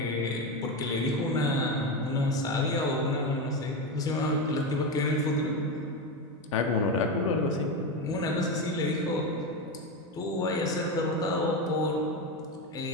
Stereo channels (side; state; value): both; normal; correlation 0.15